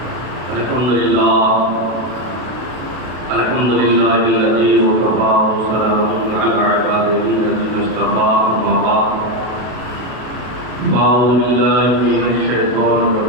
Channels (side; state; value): left; late; 32 ms